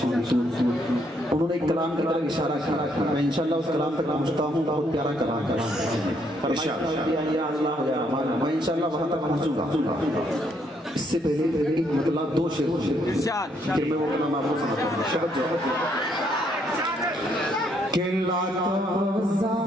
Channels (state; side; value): normal; both; correlation 0.72